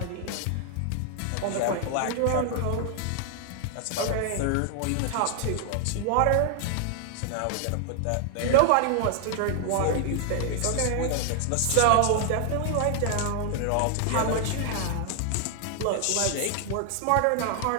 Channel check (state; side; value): different; both; correlation 0.00